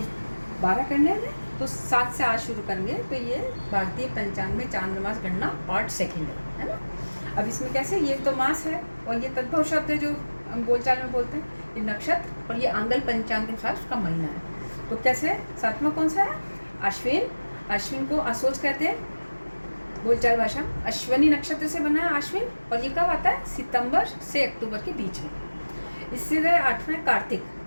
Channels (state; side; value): inverted; both; correlation -1.00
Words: 12 करने हैं तो 7 से आज शुरू करेंगे। तो ये भारतीय पंचांग में चांद्रमास गणना पार्ट 2 है ना। अब इसमें कैसे, ये तो मास है और ये तद्भव शब्द है जो हम बोलचाल में बोलते हैं, ये नक्षत्र और ये आंगल पंचांग के अनुसार उसका महीना है। तो कैसे, 7वां कौन सा है? अश्विन। अश्विन को असोज कहते हैं बोलचाल भाषा। अश्वनी नक्षत्र से बना है अश्विन और ये कब आता है? सितंबर से अक्टूबर के बीच में। इससे 8वां कार्तिक।